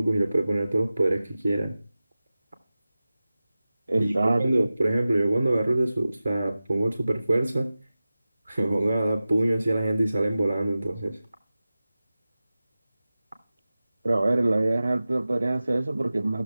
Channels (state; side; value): inverted; both; correlation -0.96